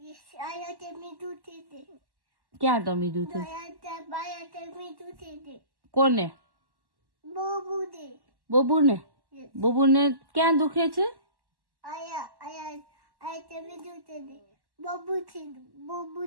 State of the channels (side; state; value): left; late; 1.1 ms